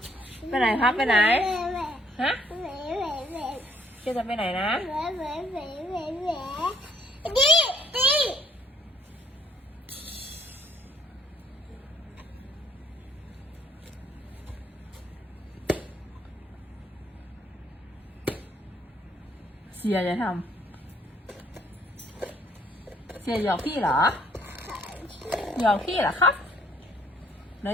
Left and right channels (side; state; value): both; normal; correlation 0.64